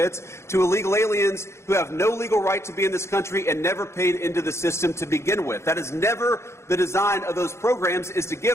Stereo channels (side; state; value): right; late; 0.13 ms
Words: to illegal aliens who have no legal right to be in this country and never paid into the system to begin with. That is never the design of those programs, is to